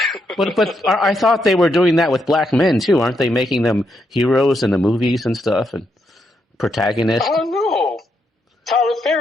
But I thought they were doing that with black men too, aren't they? Making them heroes in the movies and stuff and protagonists. I don't know. Tyler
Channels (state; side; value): normal; both; correlation 0.79